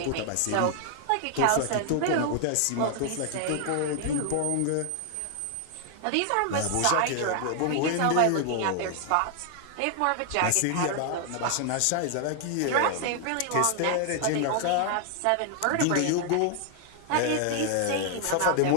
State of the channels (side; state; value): both; different; correlation 0.00